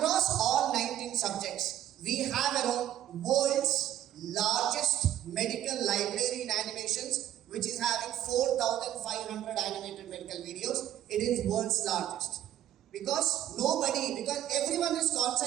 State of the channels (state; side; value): quieter; left; 12.0 dB